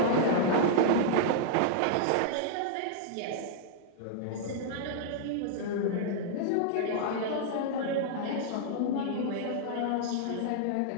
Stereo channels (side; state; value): both; different; correlation -0.01